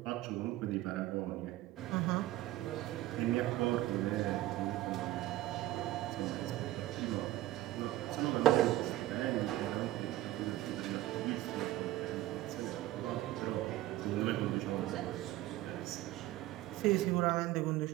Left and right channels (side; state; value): left; quieter; 15.5 dB